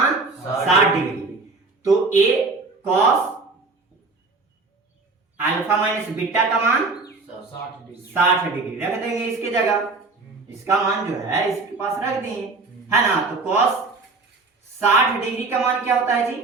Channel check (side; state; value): left; quieter; 3.8 dB